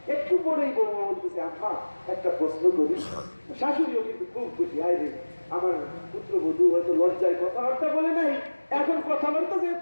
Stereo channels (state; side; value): inverted; both; correlation -1.00